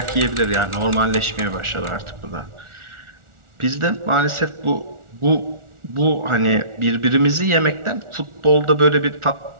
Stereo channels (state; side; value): late; left; 1.4 ms